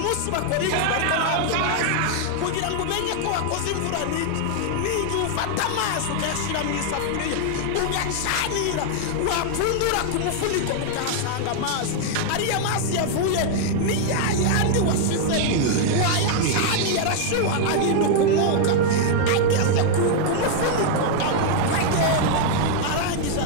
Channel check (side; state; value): both; different; correlation 0.00